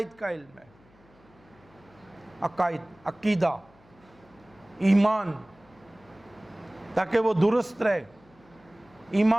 کا علم ہے. عقائد، عقیدہ، ایمان، تاکہ وہ درست رہے،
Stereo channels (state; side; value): noise; left; hum, 28 dB below the sound